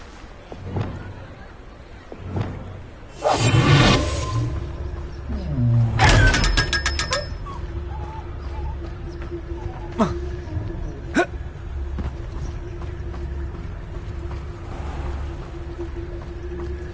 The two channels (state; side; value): identical; both; correlation 1.00